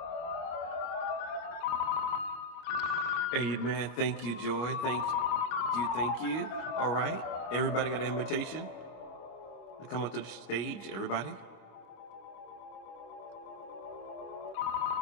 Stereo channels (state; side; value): late; right; 25 ms